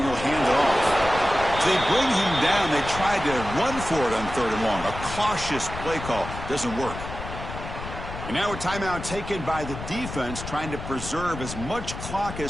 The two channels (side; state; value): left; noise; rumble, 9 dB below the sound